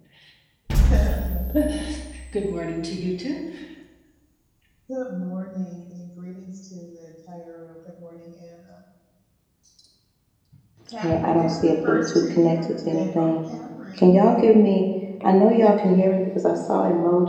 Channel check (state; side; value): identical; both; correlation 1.00